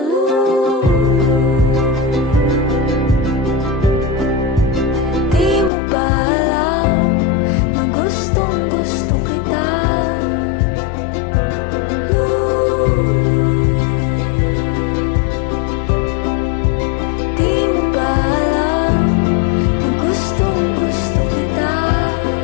Lulu. Di mo ba alam na gustong gusto kita, Lulu? Di mo ba alam na gustong gusto kita?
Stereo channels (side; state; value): right; drops out; at 5.7 s